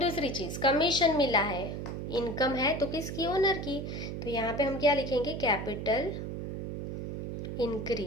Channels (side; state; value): right; noise; hum, 5 dB below the sound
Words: चीज, कमीशन मिला है, इनकम है तो किसकी, ओनर की, तो यहाँ पे हम क्या लिखेंगे, कैपिटल